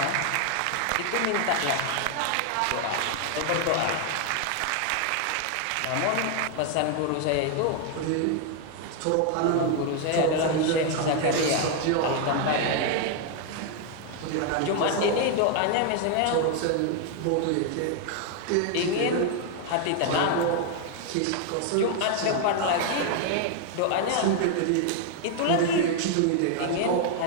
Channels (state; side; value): different; both; correlation 0.00